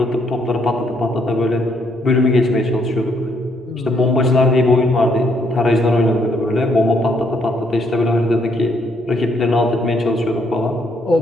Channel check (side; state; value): both; normal; correlation 0.72